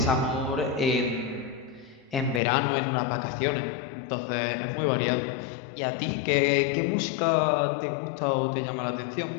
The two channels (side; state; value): right; drops out; at 2.4 s